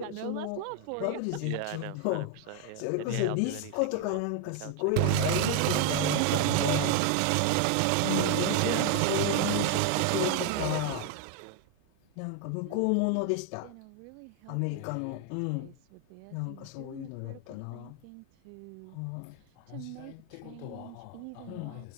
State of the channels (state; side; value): different; both; correlation 0.01